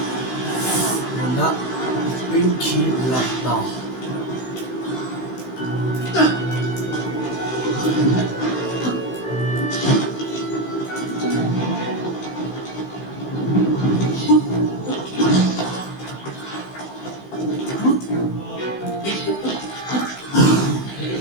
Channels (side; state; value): right; late; 16 ms